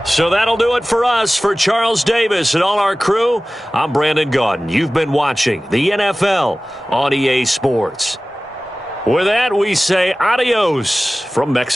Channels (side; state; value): both; normal; correlation 0.97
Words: So that'll do it for us. For Charles Davis and all our crew, I'm Brandon Gaudin. You've been watching the NFL on EA Sports. With that, we say adios from